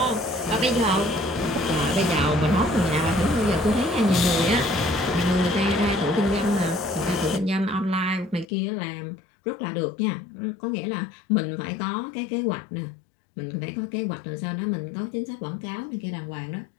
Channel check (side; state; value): right; drops out; at 8.5 s